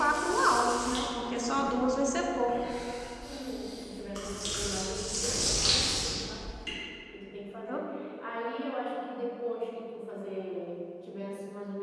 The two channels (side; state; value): both; identical; correlation 1.00